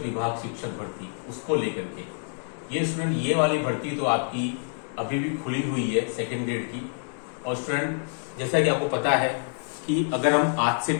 शिक्षक भर्ती उसको लेकर के ये स्टूडेंट, ये वाली भर्ती तो आपकी अभी भी खुली हुई है सेकेंड ग्रेड की। और स्टूडेंट, जैसा कि आपको पता है कि अगर हम आज से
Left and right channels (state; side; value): silent; right; digital silence